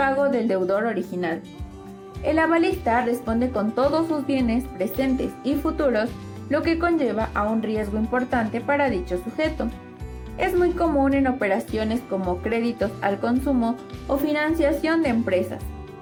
del deudor original. El avalista responde con todos sus bienes presentes y futuros, lo que conlleva a un riesgo importante para dicho sujeto. Es muy común en operaciones como créditos al consumo o financiación de empresas.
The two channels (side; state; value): both; identical; correlation 1.00